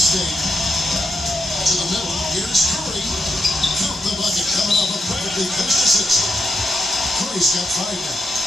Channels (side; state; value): both; normal; correlation 0.83